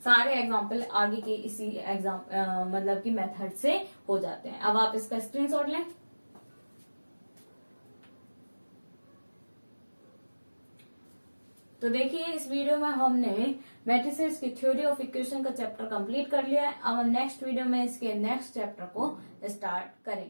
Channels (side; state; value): both; inverted; correlation -1.00